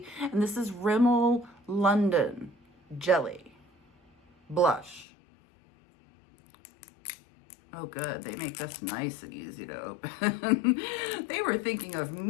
this is Rimmel London Jelly Blush. Oh good, they make this nice and easy to open. They were thinking of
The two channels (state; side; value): drops out; right; at 5.1 s